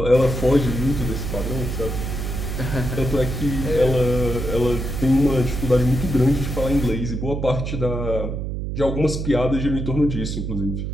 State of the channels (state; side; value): noise; right; hum, 4 dB below the sound